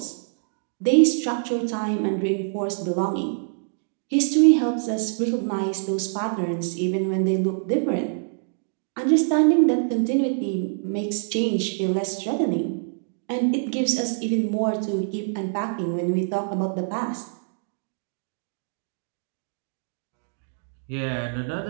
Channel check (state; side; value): silent; left; digital silence